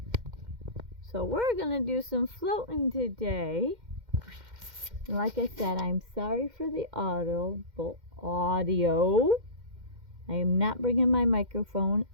So we're going to do some floating today. And like I said, I'm sorry for the audio. I am not bringing my microphone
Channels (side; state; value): left; late; 2.1 ms